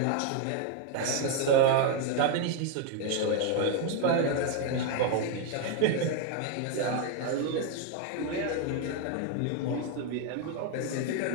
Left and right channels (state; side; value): different; both; correlation 0.00